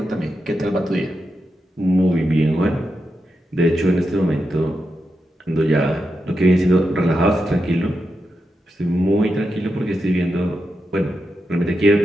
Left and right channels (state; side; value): normal; both; correlation 0.87